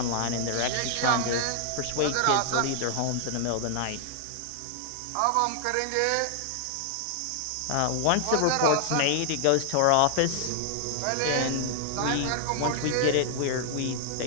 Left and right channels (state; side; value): different; both; correlation 0.00